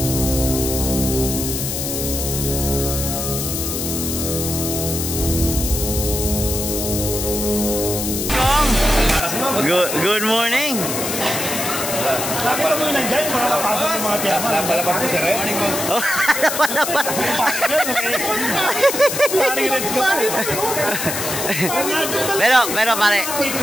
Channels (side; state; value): left; noise; hiss, 3 dB below the sound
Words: Good morning. Nakita mo yun nandyan, yung mga kapasok ng mga chairman. Napalabas ko si Red. Oh, pero pare